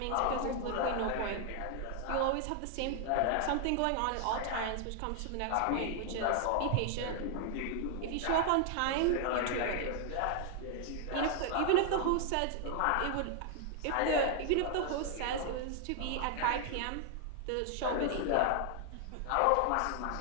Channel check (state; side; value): different; both; correlation 0.00